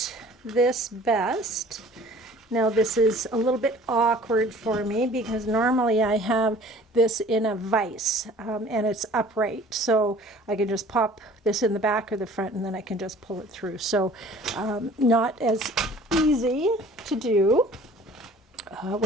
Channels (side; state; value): both; normal; correlation 0.49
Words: this best. Now this is a little bit awkward for me because normally I have this in a vise, and it's upright, so I can just pop this in the back or the front, and then I can just pull it through. So not as easy to do